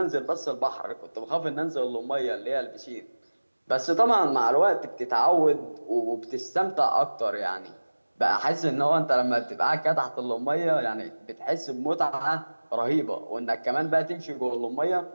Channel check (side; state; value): both; inverted; correlation -1.00